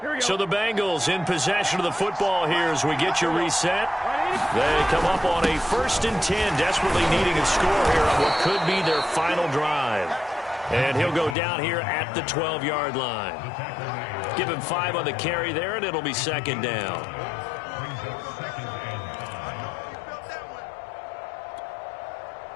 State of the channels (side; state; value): right; drops out; at 11.4 s